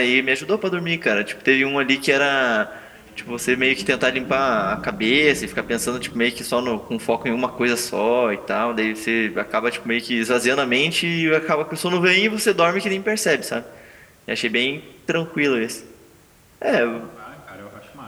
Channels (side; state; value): both; identical; correlation 1.00